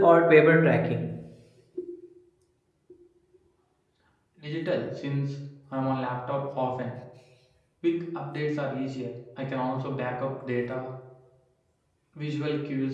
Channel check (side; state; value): both; identical; correlation 1.00